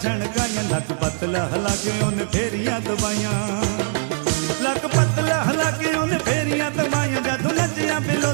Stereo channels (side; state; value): left; silent; 64 dB below the other